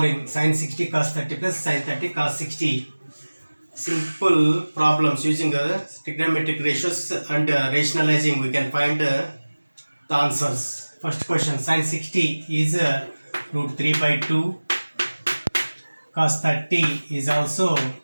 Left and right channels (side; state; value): both; inverted; correlation -1.00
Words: sin 60 cos 30 plus sin 30 cos 60. Simple problems using trigonometric ratios and rationalizing, we can find the answers. First question: sin 60 is root 3 by 2. Cos 30 is also